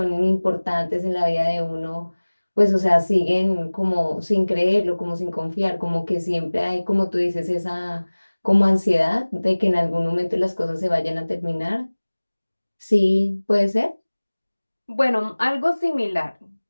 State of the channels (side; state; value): both; inverted; correlation -1.00